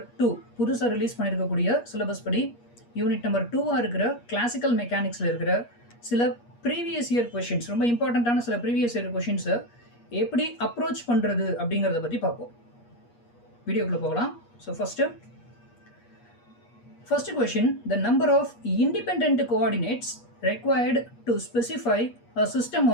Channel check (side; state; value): right; late; 8.4 ms